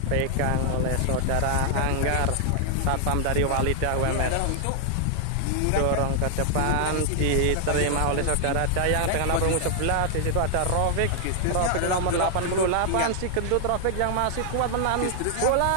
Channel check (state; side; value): different; both; correlation 0.00